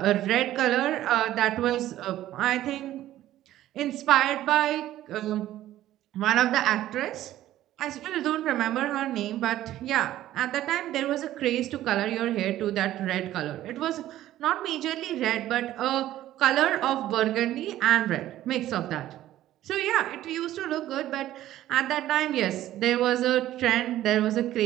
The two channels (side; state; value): left; quieter; 13.7 dB